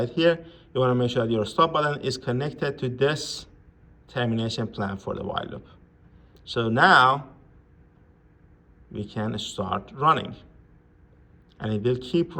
here. You wanna make sure that your stop button is connected to this termination plan for the while loop. So now we can start running, and it will keep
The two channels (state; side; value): identical; both; correlation 1.00